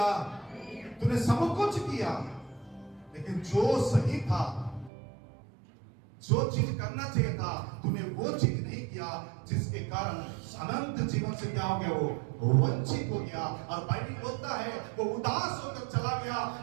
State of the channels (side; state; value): left; drops out; at 4.9 s